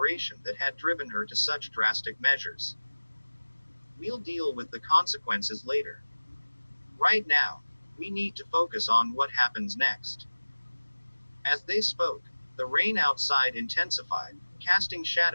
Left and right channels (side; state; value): both; inverted; correlation -1.00